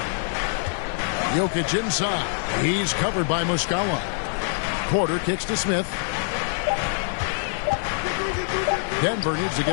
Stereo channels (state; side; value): silent; right; 62 dB below the other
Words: Jokic inside. He's covered by Muscala. Porter kicks to Smith. Denver needs to